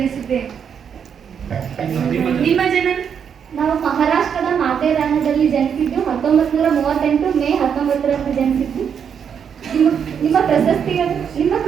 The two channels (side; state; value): left; quieter; 7.5 dB